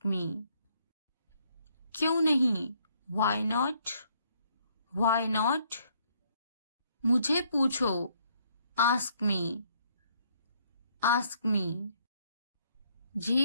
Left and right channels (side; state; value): both; inverted; correlation -0.68